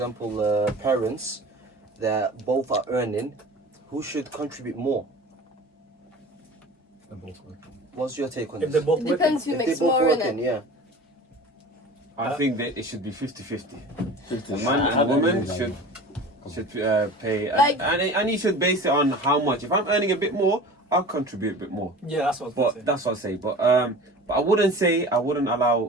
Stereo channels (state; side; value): normal; both; correlation 0.39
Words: parents that both are earning? Who should contribute more? They're both working. What's your take on If this? they're both It depends who If makes they're both more in working, it. yeah. I think that it should be 50-50. The man and the woman should pay, and you should base it on how much. If I'm earning a bit more, I'll contribute a bit more. Yeah, that's what I was gonna say. That's what I say. But I wouldn't